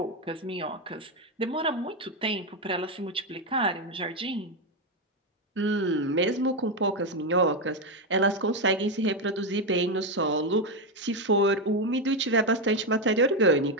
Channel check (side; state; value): both; normal; correlation 0.08